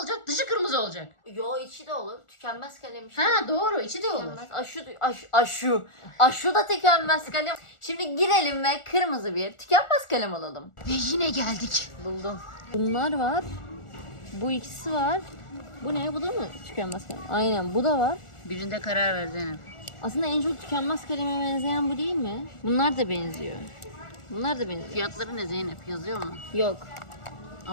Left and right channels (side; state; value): right; late; 1.4 ms